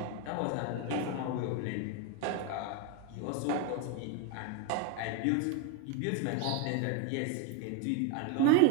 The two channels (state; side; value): different; both; correlation 0.02